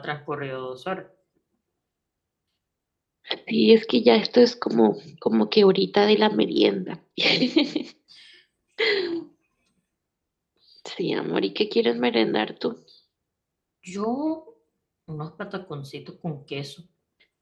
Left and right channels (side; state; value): both; identical; correlation 1.00